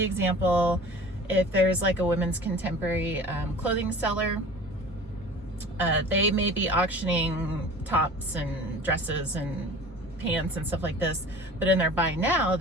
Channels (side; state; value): both; normal; correlation 0.42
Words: example, if there's like a women's contemporary clothing seller, they may be auctioning tops and dresses and pants and stuff like this, but in their buy now,